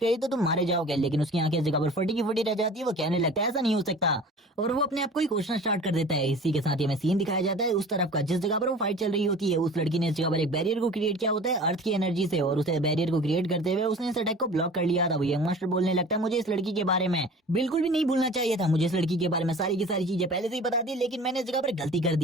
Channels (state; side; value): normal; both; correlation 0.42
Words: तो तुम मारे जाओगे, लेकिन उसकी आंखें इस जगह पर फटी की फटी रह जाती है। वो कहने लगता है ऐसा नहीं हो सकता और वो अपने आप को ही कोसना स्टार्ट कर देता है। इसी के साथ ही हमें सीन दिखाया जाता है उस तरफ का जिस जगह पर वो फाइट चल रही होती है। उस लड़की ने इस जगह पर एक बैरियर को क्रिएट किया होता है अर्थ की एनर्जी से और उसे बैरियर को क्रिएट करते हुए उसने इस अटैक को ब्लॉक कर लिया था। वो यंग मास्टर बोलने लगता है मुझे इस लड़की के बारे में बिल्कुल भी नहीं भूलना चाहिए था, मुझे इस लड़की के बारे में सारी की सारी चीजें पहले से ही बता दी लेकिन मैंने इस जगह पर गलती कर